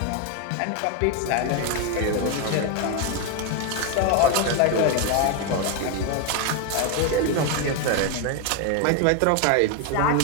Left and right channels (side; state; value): both; different; correlation 0.01